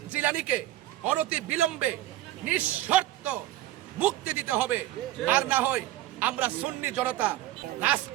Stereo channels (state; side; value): quieter; left; 14.7 dB